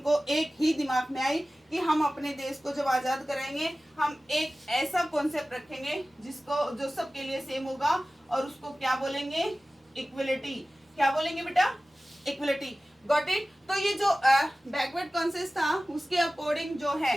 एक ही दिमाग में आई कि हम अपने देश को जब आजाद कराएंगे हम एक ऐसा कॉन्सेप्ट रखेंगे जिसको जो सबके लिए सेम होगा और उसको क्या बोलेंगे, इक्वलिटी। क्या बोलेंगे बेटा, इक्वलिटी। Got it. तो ये जो बैकवर्ड कॉन्सेप्ट था उसके अकॉर्डिंग जो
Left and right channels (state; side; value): normal; both; correlation 0.97